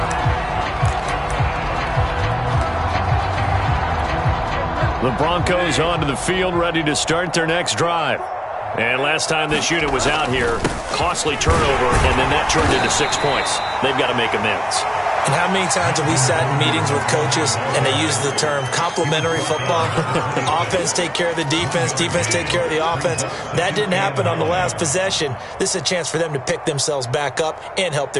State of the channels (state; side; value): identical; both; correlation 1.00